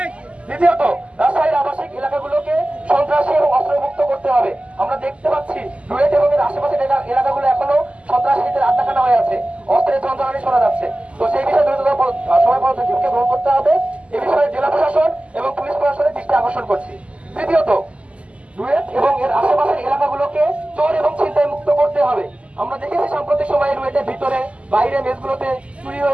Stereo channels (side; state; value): left; late; 0.058 ms